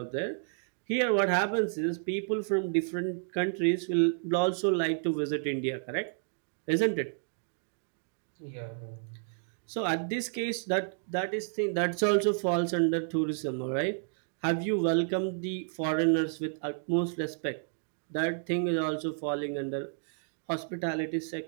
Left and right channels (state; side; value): silent; left; digital silence